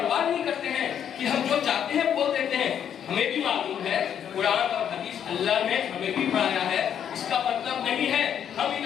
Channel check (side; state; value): right; quieter; 9.0 dB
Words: नहीं करते हैं कि हम जो चाहते हैं बोल देते हैं। हमें भी मालूम है कुरान और हदीस अल्लाह ने हमें भी पढ़ाया है। इसका मतलब नहीं है हम इन